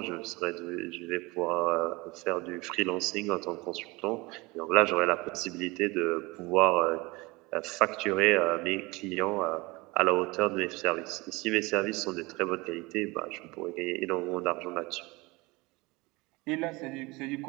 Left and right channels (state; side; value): quieter; left; 23.8 dB